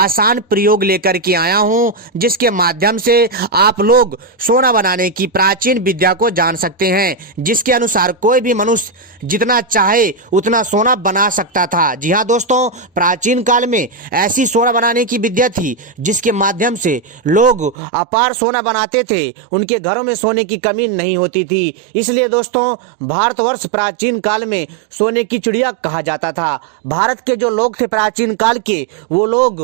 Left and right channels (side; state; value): left; drops out; at 17.8 s